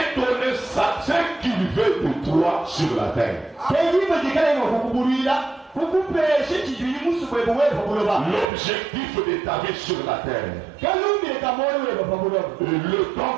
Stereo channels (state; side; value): drops out; left; at 8.5 s